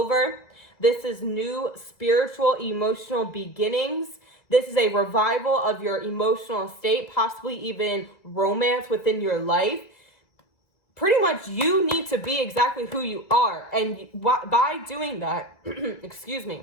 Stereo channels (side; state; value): right; late; 1.9 ms